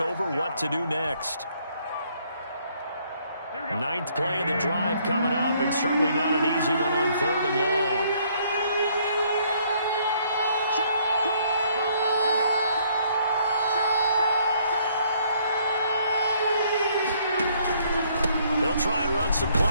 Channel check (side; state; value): both; inverted; correlation -0.65